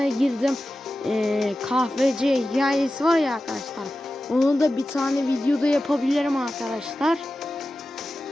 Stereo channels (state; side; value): normal; both; correlation 0.94